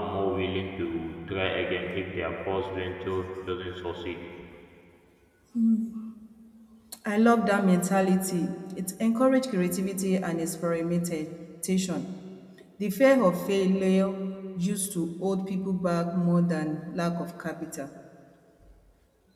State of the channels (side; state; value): both; identical; correlation 1.00